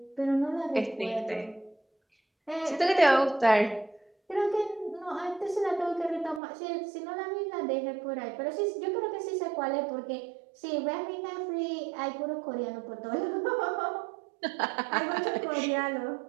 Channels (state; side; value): drops out; left; at 6.4 s